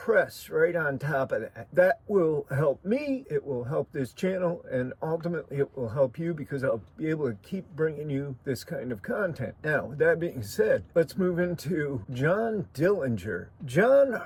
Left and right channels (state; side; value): identical; both; correlation 1.00